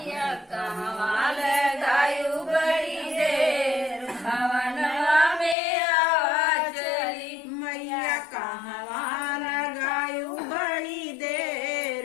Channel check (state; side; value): drops out; right; at 5.6 s